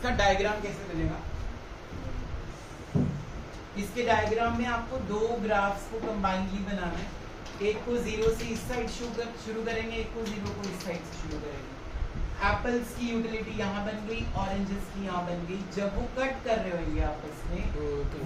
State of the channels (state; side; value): identical; both; correlation 1.00